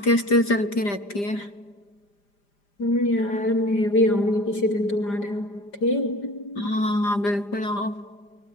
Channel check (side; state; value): right; late; 5.0 ms